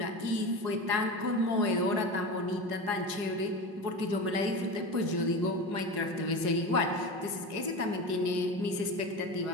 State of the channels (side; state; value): left; late; 5.5 ms